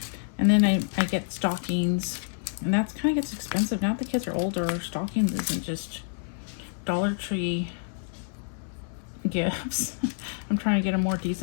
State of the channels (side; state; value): right; silent; digital silence